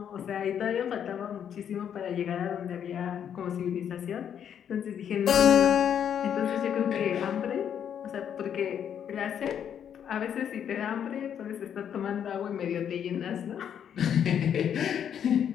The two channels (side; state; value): right; quieter; 8.8 dB